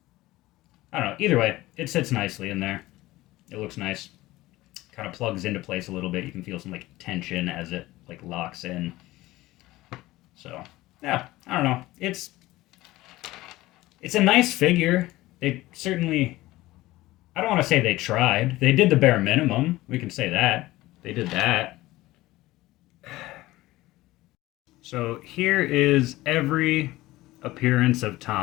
I don't know. Either way, it sits nicely in there. It looks nice. Kind of plugs into place a little bit. You can feel some like tension as it like locks in. So yeah, I don't know. It's a nice figure. They certainly, I don't want to say they tried. They did the bare minimum. We can say that. They did that. So here is every appearance of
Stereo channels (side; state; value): right; quieter; 18.0 dB